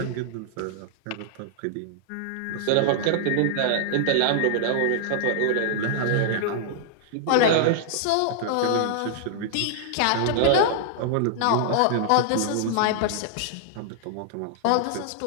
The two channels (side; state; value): both; different; correlation -0.01